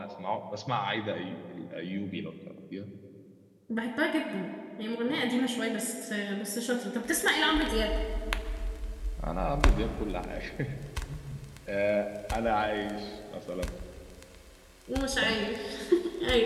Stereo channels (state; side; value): identical; both; correlation 1.00